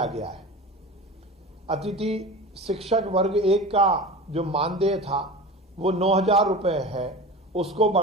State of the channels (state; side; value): normal; both; correlation 0.32